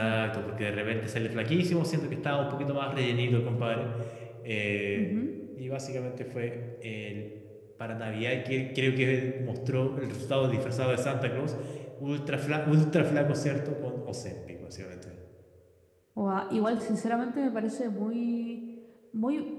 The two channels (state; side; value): identical; both; correlation 1.00